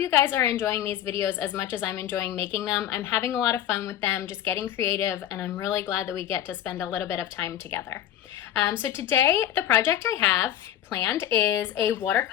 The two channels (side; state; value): right; quieter; 11.3 dB